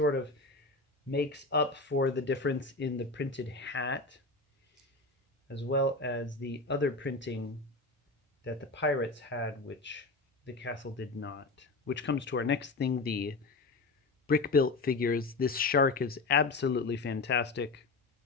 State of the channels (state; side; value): quieter; right; 3.5 dB